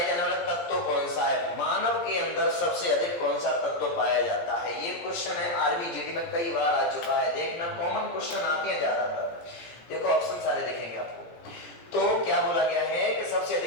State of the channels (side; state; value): right; late; 17 ms